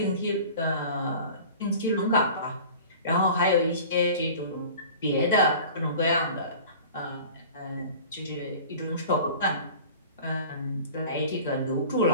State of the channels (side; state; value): both; inverted; correlation -0.41